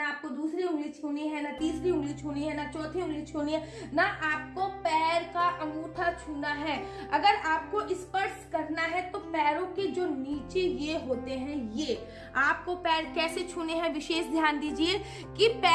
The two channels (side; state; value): both; identical; correlation 1.00